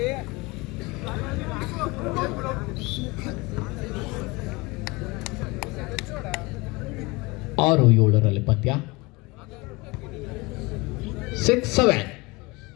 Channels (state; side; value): quieter; right; 24.5 dB